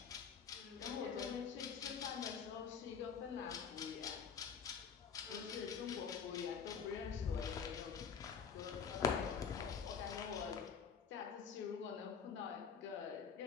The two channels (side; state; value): right; quieter; 6.7 dB